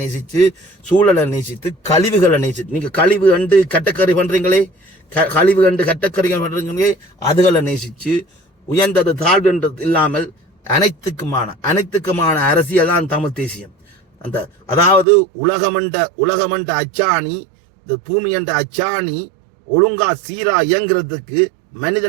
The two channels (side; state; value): left; drops out; at 15.1 s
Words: நேசித்து, சூழலை நேசித்து, கழிவுகளை நேசித்து, நீங்க கழிவு கண்டு கட்டக்கறி பண்றீங்களே, அதுகளை நேசிச்சு, உயர்ந்தது தாழ்வுன்றது இல்லாமல் அனைத்துக்குமான அரசியல் தான் தமிழ் தேசியம். அதாவது உலகமண்ட அச்சாணி, இந்த பூமி என்ற அச்சாணி ஒழுங்கா சீரா இயங்குறதுக்கு